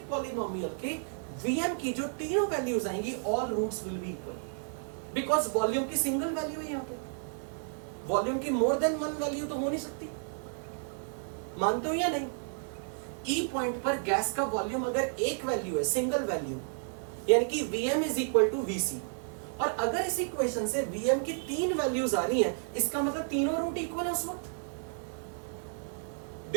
पॉलिनोमियल के Vm की जो तीनों वैल्यूज आएंगी, all roots will be equal, because volume की सिंगल वैल्यू है। यहां पे वॉल्यूम की मोर देन वन वैल्यू तो हो नहीं सकती, मानते हो या नहीं? ई पॉइंट पर गैस का वॉल्यूम अगर एक वैल्यू है, सिंगल वैल्यू, यानी कि Vm is equal to VC, और अगर इस इक्वेशन से Vm की तीन वैल्यूज आ रही हैं, इसका मतलब तीनों रूट इक्वल है उस वक्त।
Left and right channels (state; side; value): silent; left; digital silence